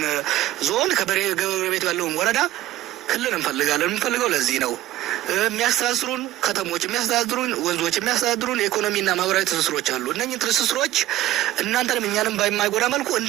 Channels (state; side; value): quieter; left; 14.6 dB